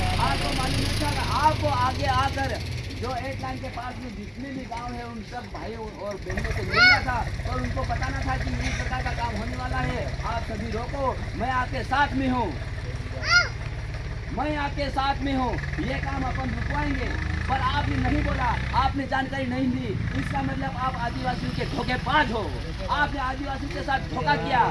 आपको मालूम नहीं था? आपको आगे आकर जो 8 लाइन के पास में जितने भी गांव है उन सब भाइयों और बहनों से मिलना था और उनको बताना था कि इस प्रकार का काम होने वाला है, आप सभी रोको, मैं आपके साथ में हूँ, मैं आपके साथ में हूँ, ये काम अपन रुकवाएंगे। पर आपने नहीं बोला, आपने जानकारी नहीं दी, इसका मतलब आप आदिवासियों के धोखेबाज हो। आपने आदिवासियों के साथ धोखा किया,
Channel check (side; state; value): both; identical; correlation 1.00